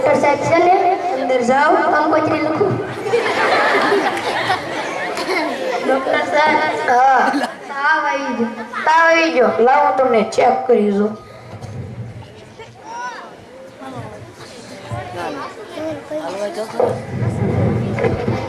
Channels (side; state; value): both; identical; correlation 1.00